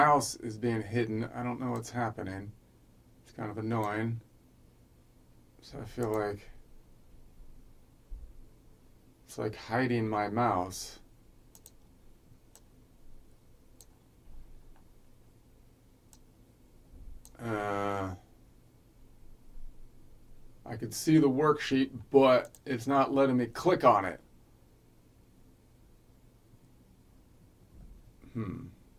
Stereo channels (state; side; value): identical; both; correlation 1.00